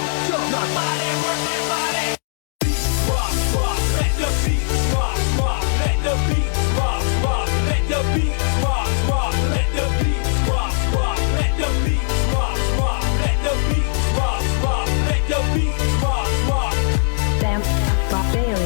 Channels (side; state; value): right; silent; digital silence